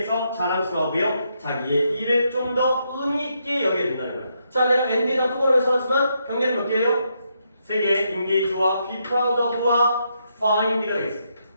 자랑스러워하고요. 자기의 일을 좀 더 의미 있게 여기게 된다는 거예요. 자, 내가 엔드에다 똑바로 써놨지만 경계는 몇 개예요? 3개. engage와 be proud of와 find가 되겠습니다.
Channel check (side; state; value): both; inverted; correlation -0.79